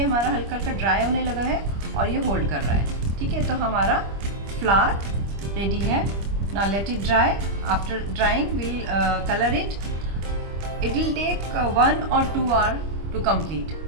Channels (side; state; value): left; late; 25 ms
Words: हमारा हल्का हल्का ड्राई होने लगा है और ये होल्ड कर रहा है. ठीक है, तो हमारा फ्लावर रेडी है. Now let it dry. After drying we'll color it. It will take 1 or 2 hours to complete.